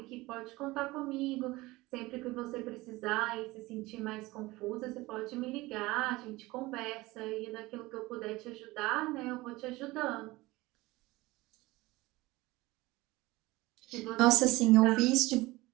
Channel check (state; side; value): quieter; left; 20.3 dB